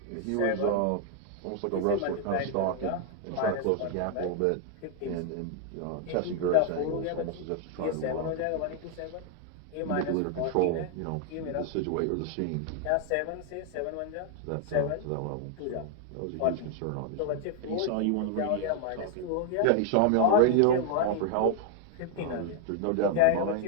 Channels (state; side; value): different; both; correlation 0.00